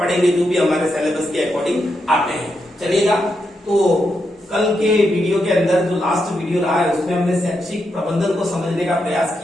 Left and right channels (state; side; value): normal; both; correlation 0.83